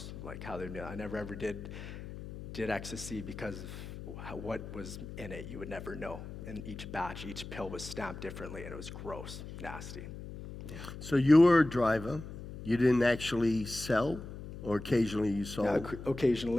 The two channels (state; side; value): noise; left; hum, 11 dB below the sound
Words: Like how they. I never ever did ecstasy because of what was in it. You would never know. In each batch, each pill was stamped differently, and it was gross, nasty. Yeah. So you were a driver. You didn't actually sell, or occasionally you sold? Yeah,